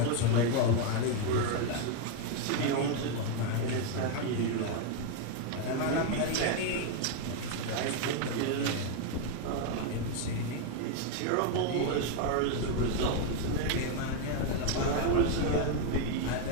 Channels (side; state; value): both; different; correlation 0.01